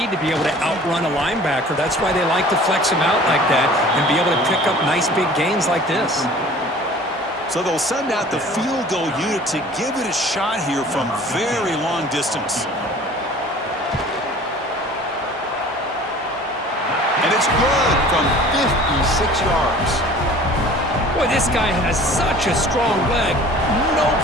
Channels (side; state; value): both; normal; correlation 0.46